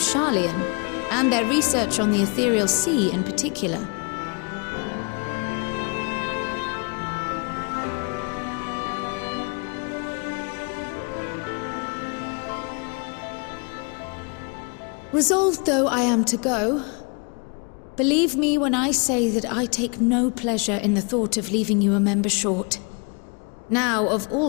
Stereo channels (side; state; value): right; quieter; 34.2 dB